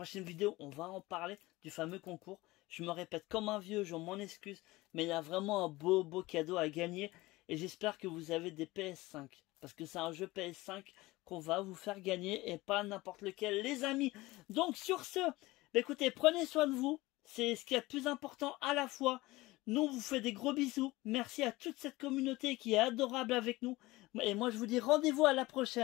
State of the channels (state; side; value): quieter; right; 20.0 dB